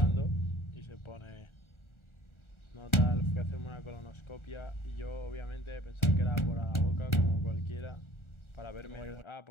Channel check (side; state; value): right; late; 1.4 ms